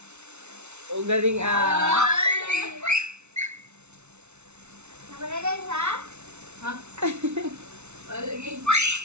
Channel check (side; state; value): left; late; 0.82 ms